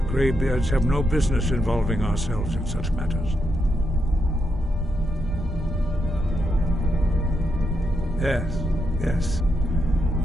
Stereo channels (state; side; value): normal; both; correlation 0.82